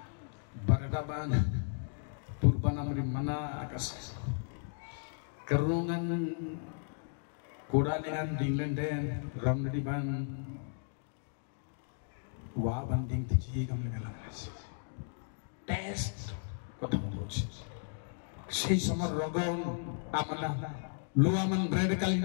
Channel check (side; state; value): right; silent; digital silence